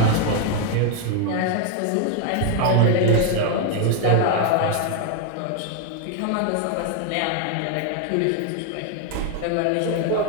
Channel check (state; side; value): different; both; correlation 0.01